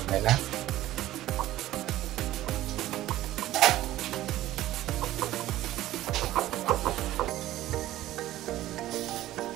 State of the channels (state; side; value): quieter; left; 14.8 dB